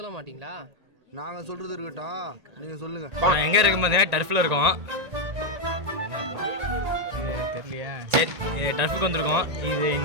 மாட்டீங்களா? நாங்க சொல்றது இருக்கட்டும், நீங்க சொல்லுங்க. எங்க இருக்கும் பார்த்தீங்கன்னா டர்ஃபில் இருக்கோம். தெரியலையா? சரி, டர்ஃபுக்கு வந்திருக்கோம். இது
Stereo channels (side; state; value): left; late; 1.9 ms